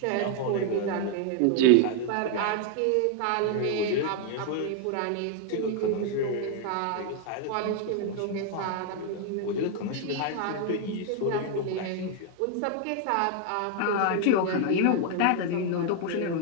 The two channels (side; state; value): both; different; correlation 0.00